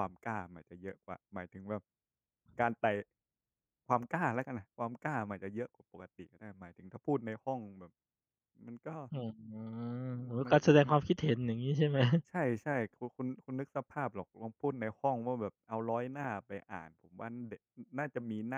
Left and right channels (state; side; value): identical; both; correlation 1.00